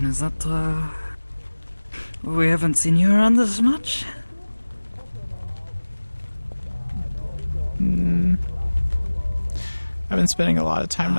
is that, we haven't seen you around this much? I've been spending a lot of time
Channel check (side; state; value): both; inverted; correlation -1.00